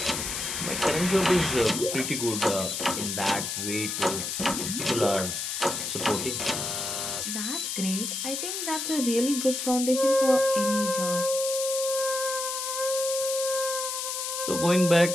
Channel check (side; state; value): left; noise; hiss, 3 dB below the sound